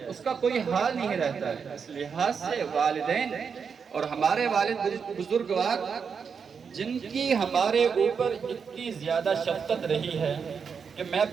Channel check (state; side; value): quieter; left; 6.2 dB